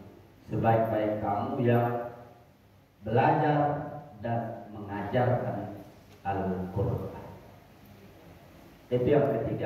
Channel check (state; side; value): identical; both; correlation 1.00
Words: Sebaik-baik kamu yang belajar dan mengajarkan Al-Quran. Itu yang